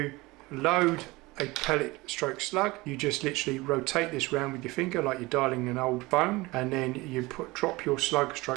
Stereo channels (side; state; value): left; quieter; 21.9 dB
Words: load a pellet stroke slug, you just literally rotate this round with your finger like you're dialing an old phone, and then you drop your slug